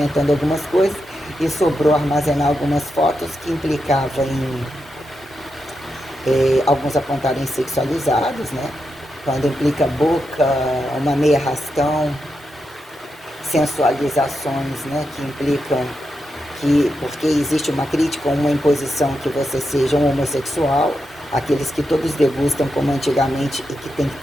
algumas coisas, e sobrou armazenar algumas fotos que implicavam em alguns apontarem sexualizados, né? Quando implica boca, uma meia arrastão, sensualizações, né? Que implicam que, porque existe uma crítica ou uma imposição que você seja um homossexual, aqueles que todos degustam como antigamente e que têm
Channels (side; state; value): both; normal; correlation 0.86